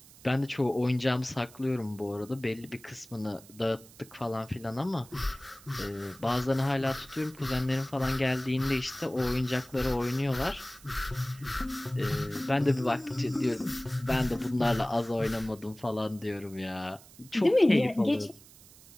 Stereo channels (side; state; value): right; noise; hiss, 22 dB below the sound